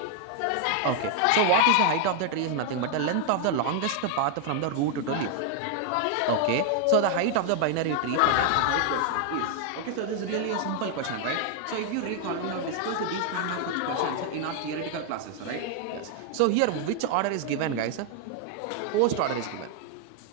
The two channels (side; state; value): both; different; correlation 0.00